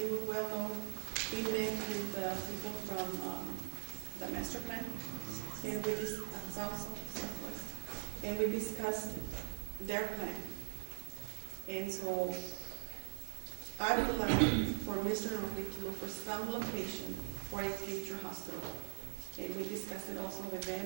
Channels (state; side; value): silent; left; 50 dB below the other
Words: well know, we met with the people from the master plan, and we Southwest, and we discussed their plan. And so I would like for Mr. Norfleet to look for some location for a future hospital. And we discussed it also with